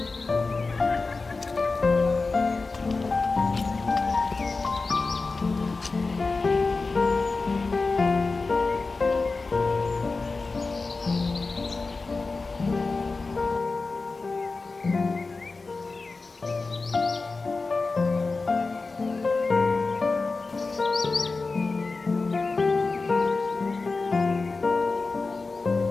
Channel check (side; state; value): right; quieter; 3.9 dB